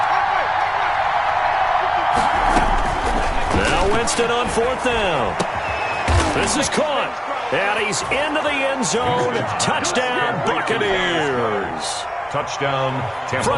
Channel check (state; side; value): identical; both; correlation 1.00